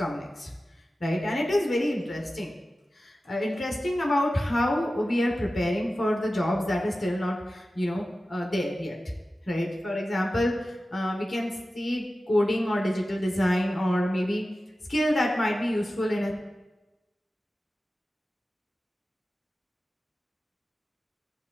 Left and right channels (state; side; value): normal; both; correlation 0.95